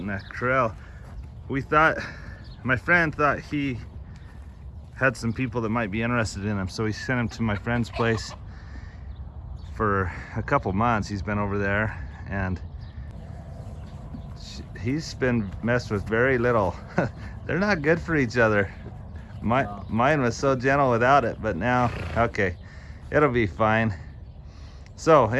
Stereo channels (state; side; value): identical; both; correlation 1.00